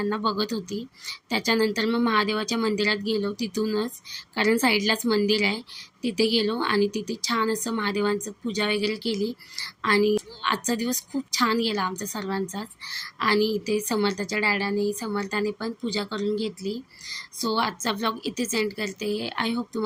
बघत होती. त्याच्यानंतर मग महादेवाच्या मंदिरात गेलो तिथूनच, कारण साईडलाच मंदिर आहे. तिथे गेलो आणि तिथे छान असं महादेवांचं पूजा वगैरे केली आणि आजचा दिवस खूप छान गेला आमचा सर्वांचाच. आणि इथे समर्थाने पण पूजा करून घेतली. सो आजचा व्लॉग इथेच एंड करते. आय होप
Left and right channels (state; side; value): identical; both; correlation 1.00